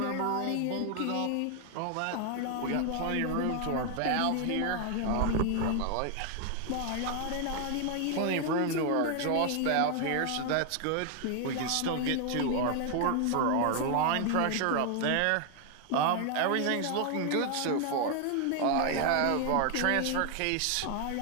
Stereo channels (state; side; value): different; both; correlation 0.00